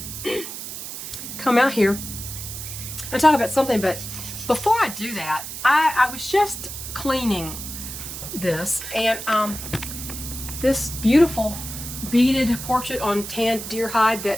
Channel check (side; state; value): right; noise; hiss, 9 dB below the sound